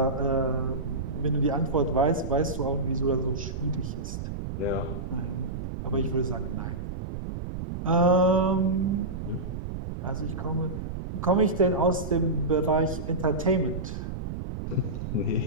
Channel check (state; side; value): noise; right; rumble, 6 dB below the sound